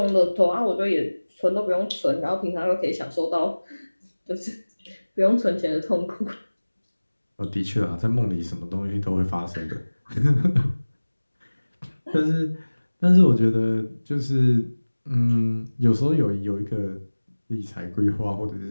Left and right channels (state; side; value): inverted; both; correlation -1.00